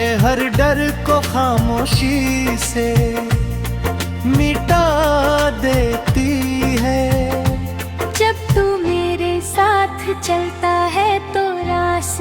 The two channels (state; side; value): identical; both; correlation 1.00